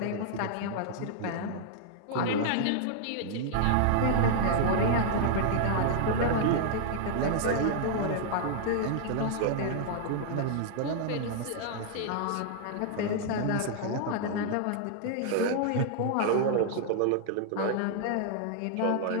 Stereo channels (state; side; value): different; both; correlation -0.01